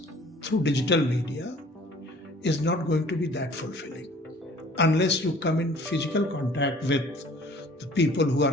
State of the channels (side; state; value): both; normal; correlation 0.51